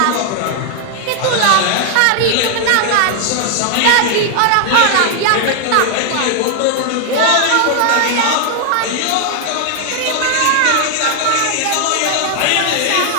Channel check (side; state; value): both; different; correlation 0.00